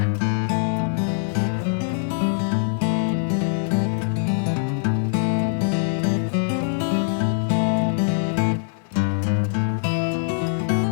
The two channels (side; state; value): right; silent; 64 dB below the other